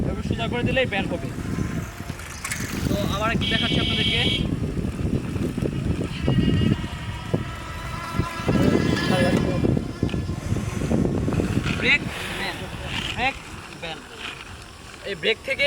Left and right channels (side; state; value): both; identical; correlation 1.00